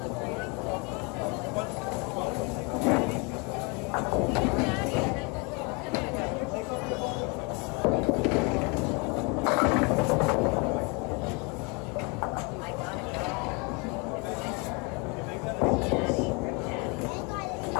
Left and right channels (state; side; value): quieter; right; 30.9 dB